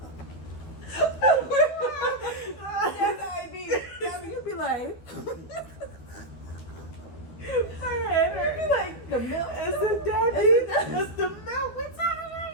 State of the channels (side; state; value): right; late; 12 ms